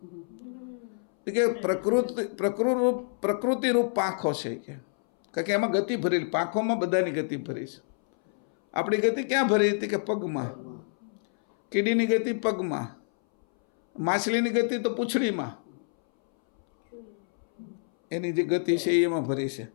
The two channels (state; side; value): silent; right; 60 dB below the other